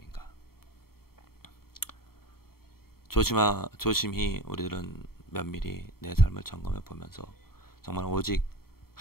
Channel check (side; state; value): right; late; 0.94 ms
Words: 조심히 우리들은 면밀히 내 삶을 점검해 보면서 정말 오직